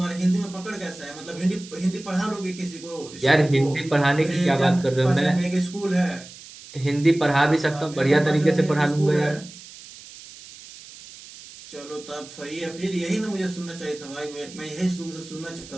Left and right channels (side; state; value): right; noise; hiss, 17 dB below the sound